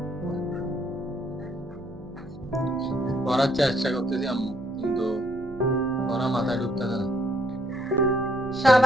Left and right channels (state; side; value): noise; right; hum, 19 dB below the sound